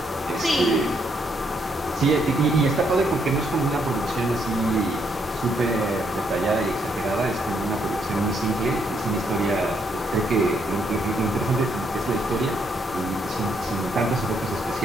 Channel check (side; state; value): both; normal; correlation 0.74